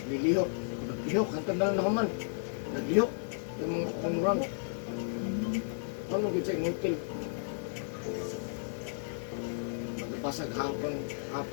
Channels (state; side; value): silent; right; digital silence